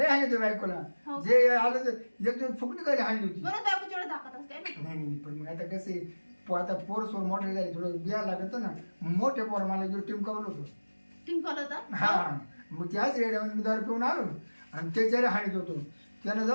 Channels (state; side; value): inverted; both; correlation -1.00